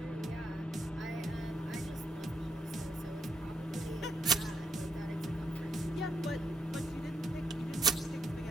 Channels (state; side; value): normal; both; correlation 0.77